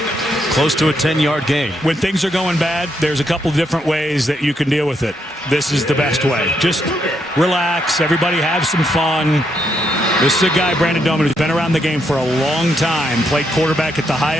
Close to a 10-yard gain. When things are going bad, there's a couple different ways that you can deal with it. This is the best way. Just relax. Everybody have some fun. This is a guy, Brandon Doman, who's been around the game for a long time. Played quarterback at the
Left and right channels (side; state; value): both; normal; correlation 0.78